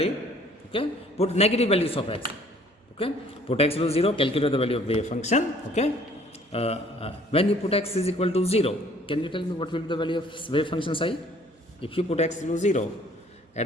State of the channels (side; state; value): both; normal; correlation 0.57